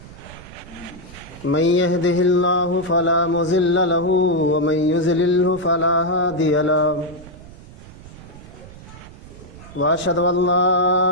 من يهده الله فلا مضل له ومن يضلل فلا هادي له وأشهد أن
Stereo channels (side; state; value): right; noise; rumble, 18 dB below the sound